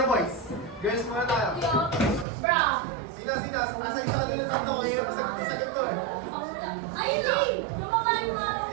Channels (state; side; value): drops out; left; at 2.2 s